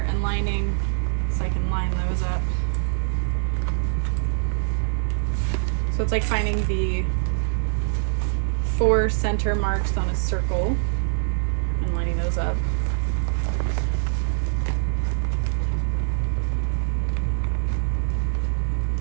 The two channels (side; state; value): left; silent; 63 dB below the other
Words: and lining so I can line those up. So it's like finding the 4 center marks on a circle and lining those up.